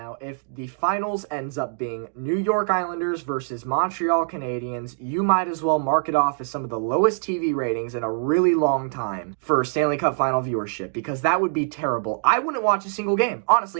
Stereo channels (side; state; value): left; silent; digital silence